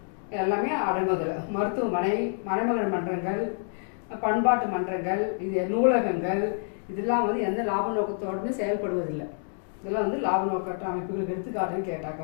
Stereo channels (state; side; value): silent; right; digital silence